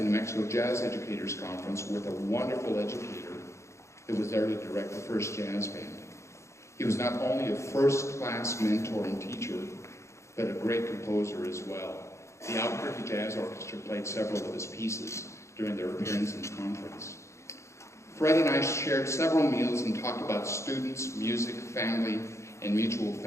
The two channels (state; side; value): late; right; 0.14 ms